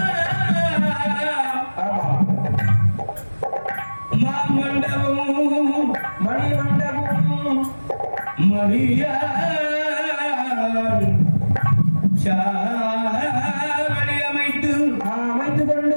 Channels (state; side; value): inverted; both; correlation -1.00